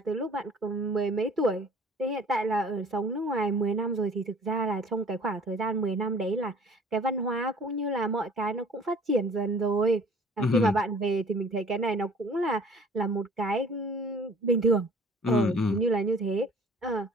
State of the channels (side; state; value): both; normal; correlation 0.51